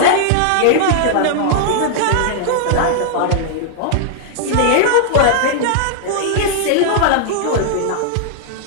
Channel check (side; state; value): both; different; correlation -0.01